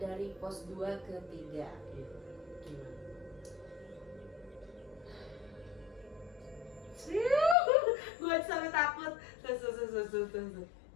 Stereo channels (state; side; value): drops out; right; at 7.6 s